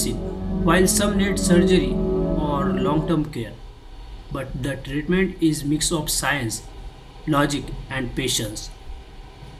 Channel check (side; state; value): both; identical; correlation 1.00